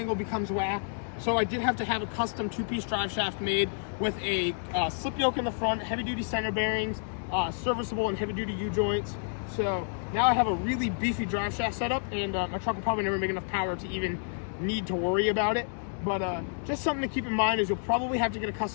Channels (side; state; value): right; silent; digital silence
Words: becomes whack. So I did have to have a custom 2-piece drive shaft made with a slip yoke in the front, heavy-duty center bearings, serviceable and heavy-duty U-joints. So now I have a really beefy drive shaft setup, and my truck will probably never make enough power to even need to worry about it. But just something to keep in mind is you'll probably have to get a